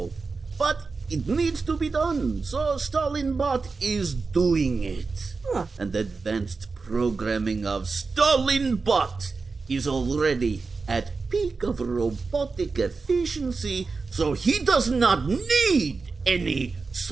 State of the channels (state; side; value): quieter; left; 4.3 dB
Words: but it needs to be done, so Stalinbot is doing it. And advanced programming of Stalinbot is already at peak of robotic efficiency, so he does not need any